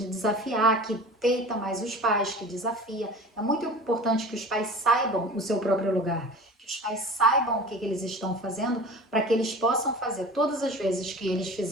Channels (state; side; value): normal; both; correlation 0.37